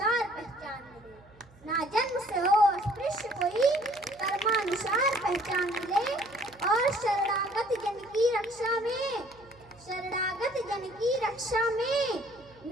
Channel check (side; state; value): right; noise; hum, 26 dB below the sound